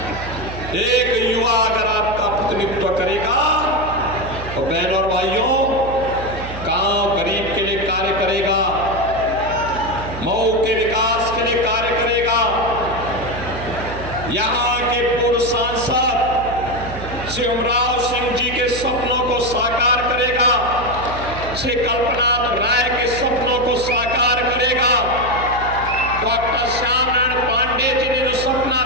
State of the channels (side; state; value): right; noise; hum, 10 dB below the sound